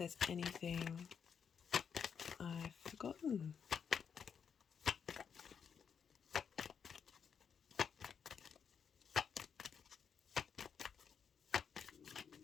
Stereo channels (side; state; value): right; quieter; 7.0 dB